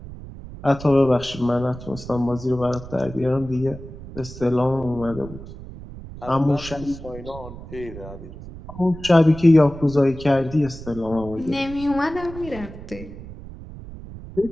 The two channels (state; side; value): noise; right; rumble, 14 dB below the sound